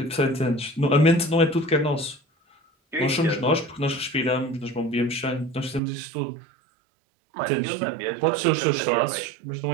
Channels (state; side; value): drops out; left; at 5.8 s